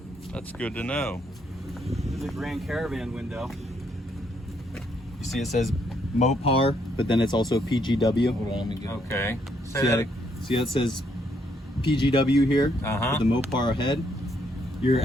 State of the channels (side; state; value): both; normal; correlation 0.72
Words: That's good to know. This is a Grand Caravan window. You see it says Mopar, but then it's also PGW. Hold on, let me get it. Okay. See how it says PGW here with the Mopar ahead? Your